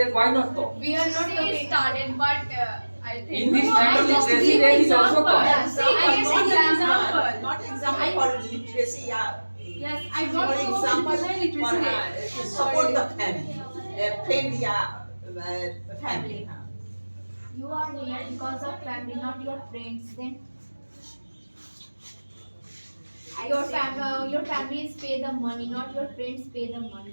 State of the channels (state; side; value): inverted; both; correlation -1.00